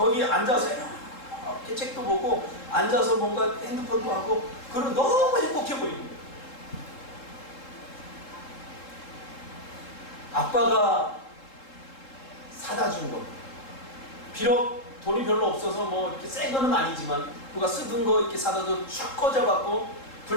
앉아서 이렇게 책도 보고 앉아서 뭔가 핸드폰도 하고 그러면 너무 행복해 보이는 거예요. 아빠가 사다 준 거. 비록 돈이 별로 없어서 뭐 이렇게 센 거는 아니지만 누가 쓰던 거 이렇게 사다 줘 쭉 꽂아갖고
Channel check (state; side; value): late; right; 3.7 ms